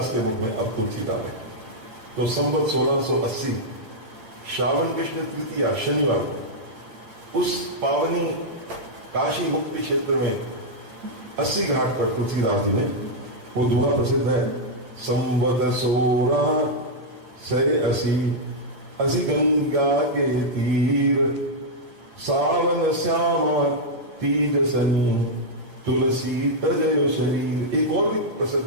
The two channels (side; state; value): left; late; 8.9 ms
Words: के मुख में अब तुलसी डालें। तो संवत 1680 श्रावण कृष्ण तृतीया शनिवार को उस पावनी काशी मुक्ति क्षेत्र में 80 घाट पर तुलसीदास जी ने वो दोहा प्रसिद्ध है, संवत 1680 गंगा के तीर, सावन श्यामा तीज सनी, तुलसी तजयो शरीर। एक और भी